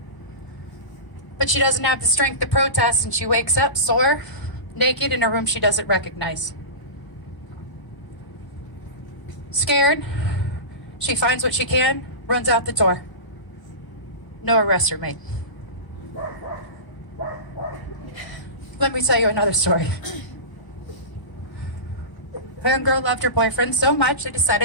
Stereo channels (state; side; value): late; right; 1.0 ms